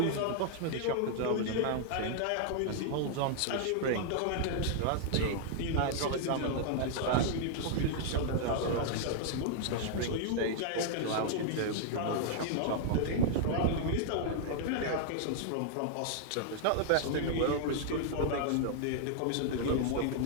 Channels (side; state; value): both; different; correlation -0.01